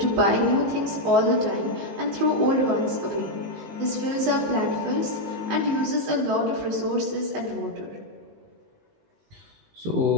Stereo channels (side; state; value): left; late; 19 ms